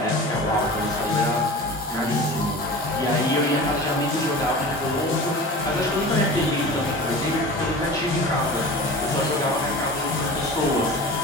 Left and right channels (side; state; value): both; normal; correlation 0.35